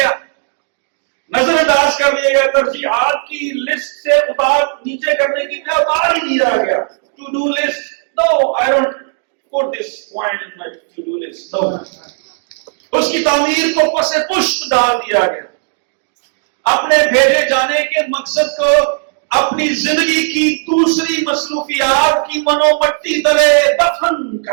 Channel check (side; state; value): left; silent; digital silence